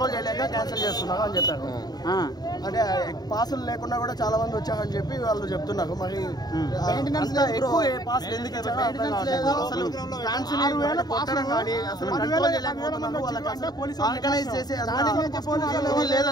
చేయలేక క్యాన్సిల్ చేస్తున్నారు అని చెప్పారు. అంటే పాసులు లేకుండా కూడా చాలా మంది వచ్చారని చెప్పి వాళ్ళు చెప్తున్నారు. మరి ఎక్కువ పాసులు ఎందుకు అసలు ఫ్యాన్స్ కానీ అసలు కంట్రోల్ చేయలేకపోతున్నారు. వాళ్ళకి ఆర్గనైజ్ చేసే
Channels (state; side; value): late; right; 0.19 ms